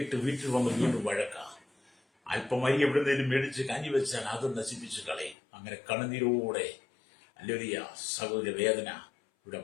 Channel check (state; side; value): drops out; right; at 5.4 s